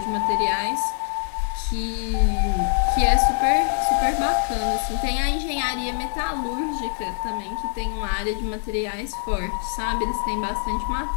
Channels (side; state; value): right; silent; 63 dB below the other